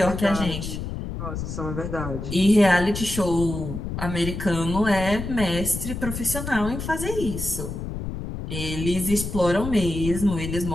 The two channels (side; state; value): left; noise; rumble, 6 dB below the sound